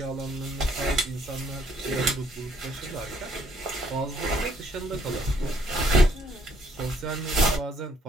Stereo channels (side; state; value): both; normal; correlation 0.66